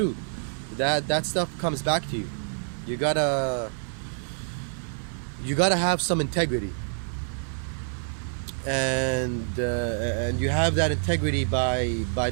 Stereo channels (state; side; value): silent; left; digital silence